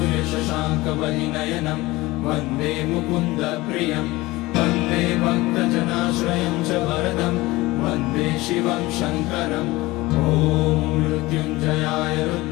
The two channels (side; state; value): right; quieter; 20.1 dB